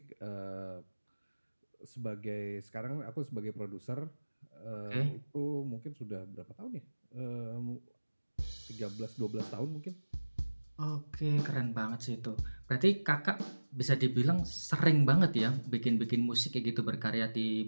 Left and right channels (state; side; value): inverted; both; correlation -1.00